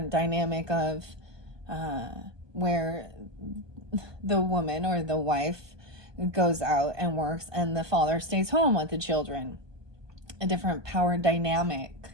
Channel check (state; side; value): late; left; 1.2 ms